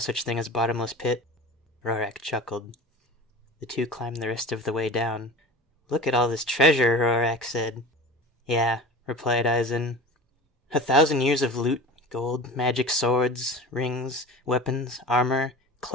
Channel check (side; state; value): both; normal; correlation 0.34